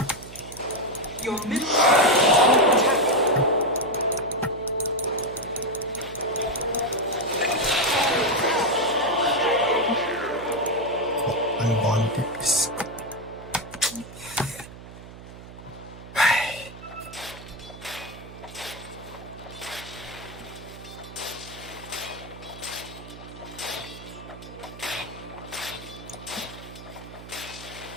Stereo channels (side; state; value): right; noise; hum, 15 dB below the sound